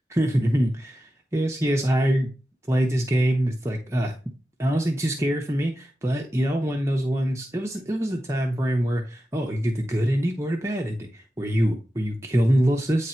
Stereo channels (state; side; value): normal; both; correlation 0.92